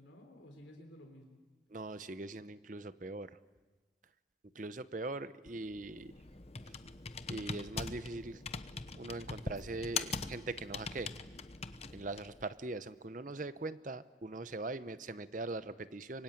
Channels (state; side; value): normal; both; correlation 0.38